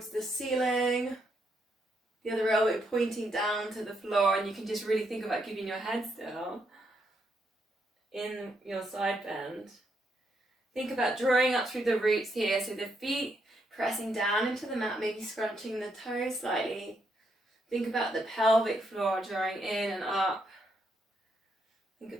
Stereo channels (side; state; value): both; normal; correlation 0.77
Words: the ceiling, the other elbow pointing down to the floor, and you can just really think about keeping your head still in your side bend. Think about drawing up through the roots here, so the feet pressing down into the mat, maybe scrunching the toes slightly. Think about the pelvic floor drawing in and up. Think